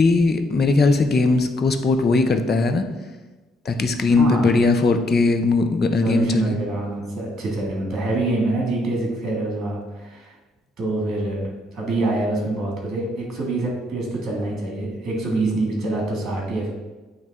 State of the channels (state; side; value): normal; both; correlation 0.73